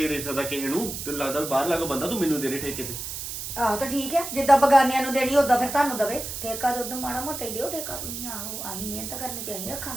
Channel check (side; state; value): right; noise; hiss, 7 dB below the sound